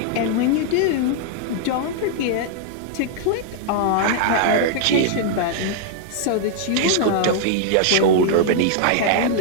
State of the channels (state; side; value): different; both; correlation -0.01